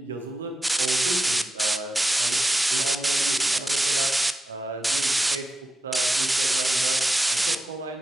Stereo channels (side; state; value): both; normal; correlation 0.89